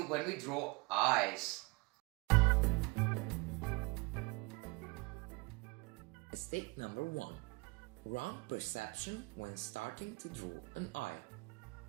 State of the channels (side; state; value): left; quieter; 26.7 dB